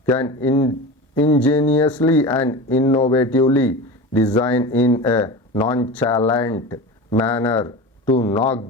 can ingeniously and innovatively design in a nonchalant manner to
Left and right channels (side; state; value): both; normal; correlation 0.29